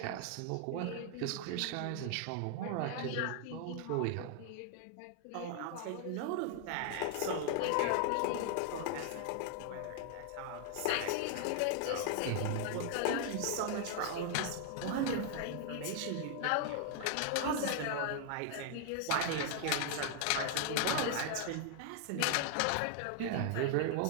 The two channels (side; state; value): both; different; correlation 0.00